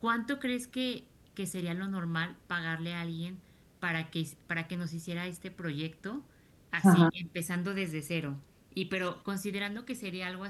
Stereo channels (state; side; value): identical; both; correlation 1.00